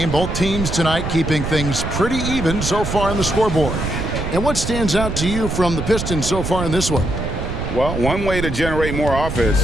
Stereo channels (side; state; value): right; noise; rumble, 4 dB below the sound